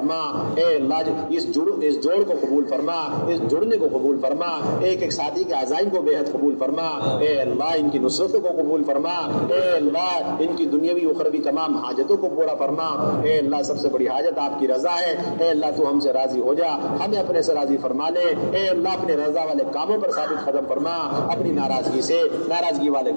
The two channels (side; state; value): both; inverted; correlation -1.00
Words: اے اللہ اس جوڑ کو قبول فرما, اس جڑنے کو قبول فرما, ایک ایک ساتھی کے عزائم کو بے حد قبول فرما, اے اللہ ان کی نصرتوں کو قبول فرما, اے اللہ ان کی دنیاوی اخروی تمام حاجتوں کو پورا فرما. اے اللہ سب سے بڑی حاجت آپ کی رضا ہے, اے اللہ تو ہم سے راضی ہو جا, ہمیں اپنے سے راضی فرما لے. اے اللہ اپنے رضا والے کاموں پر ثابت قدم فرما, اپنی ناراضگی والے